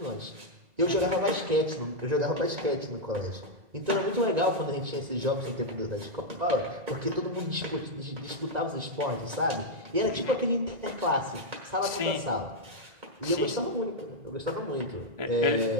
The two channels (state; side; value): late; left; 2.0 ms